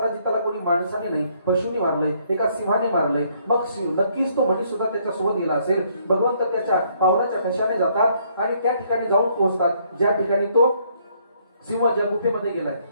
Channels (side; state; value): both; inverted; correlation -0.67